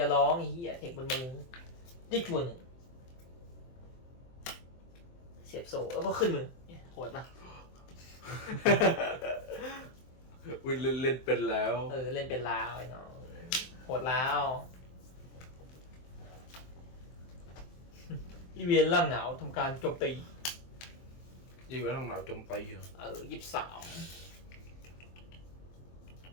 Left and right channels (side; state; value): right; late; 23 ms